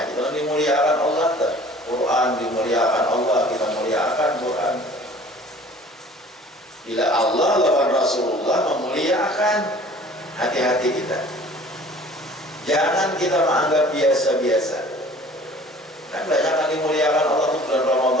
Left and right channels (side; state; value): both; normal; correlation 0.48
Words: aja kalau dimuliakan Allah, tak? Quran dimuliakan Allah, kita muliakan Quran. Bila Allah lawan Rasulullah memuliakan, hati-hati kita. Jangan kita menganggap biasa-biasa. Kan banyak yang dimuliakan Allah itu bulan